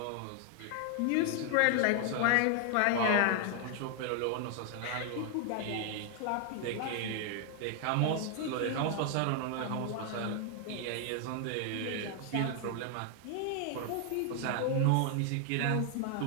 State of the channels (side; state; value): both; different; correlation 0.00